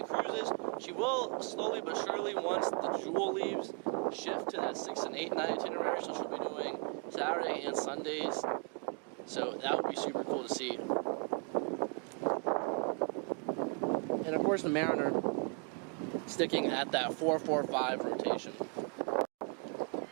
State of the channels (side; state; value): left; quieter; 38.9 dB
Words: cruises. She will slowly but surely, once the Jewel leaves, shift to that 6- and 8-night itinerary. So she'll be doing Saturday and Sundays. So that would be super cool to see. And of course the Mariner sticking at that 4-4-5 rotation.